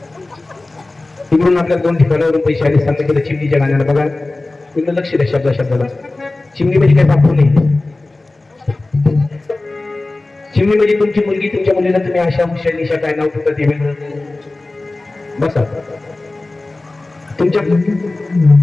तिकडून आपल्या 2 ठिकाणावरून पैसे आले सांगता केलं चिमणीच्या गाण्याला बघा तिकडे लक्ष द्या शब्दाला चिमणी म्हणजे काही बापू नाही चिमणी म्हणजे तुमची मुलगी तुमच्या मुलीला तुम्ही अशा हुशार निशा काय नाव ठेवता ते वेगळं बसा तुमच्या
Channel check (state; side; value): quieter; right; 3.1 dB